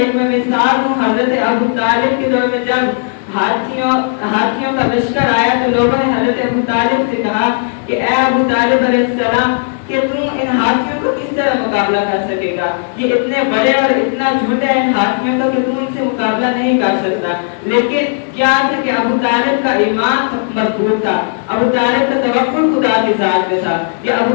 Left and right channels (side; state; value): right; silent; digital silence